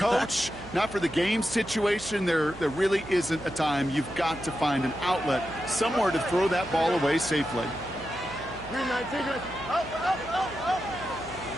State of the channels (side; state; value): right; noise; hum, 17 dB below the sound